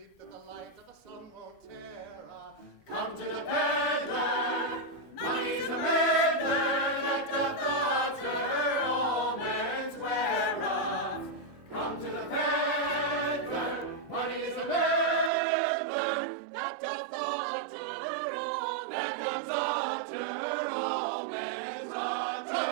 that the light of the sun won't tear. Come to the peddler, money's a meddler that doth utter all men's wear. Come to the peddler, money's a meddler that doth utter all men's utter all men's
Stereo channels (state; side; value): drops out; left; at 15.3 s